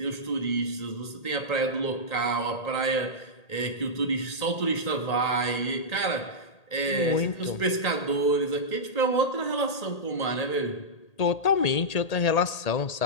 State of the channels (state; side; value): late; right; 1.8 ms